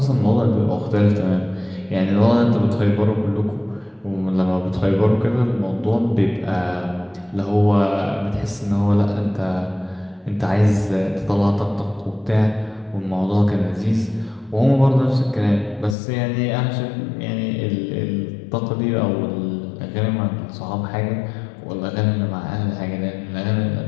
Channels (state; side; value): drops out; right; at 16.0 s